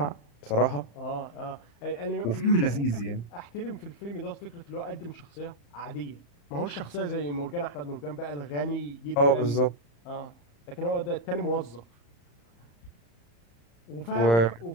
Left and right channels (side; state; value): right; late; 35 ms